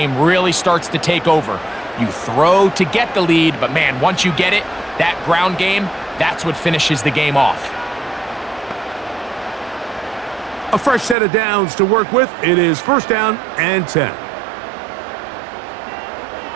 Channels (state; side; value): drops out; left; at 11.2 s